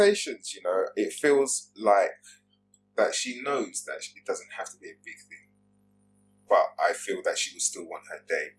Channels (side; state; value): both; identical; correlation 1.00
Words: you know, it feels like that she knows that it doesn't have to be a big thing, but I feel that she would still want her day.